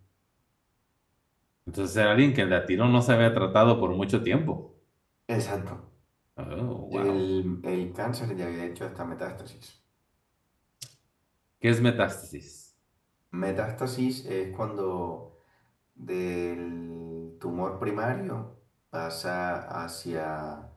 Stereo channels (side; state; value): both; identical; correlation 1.00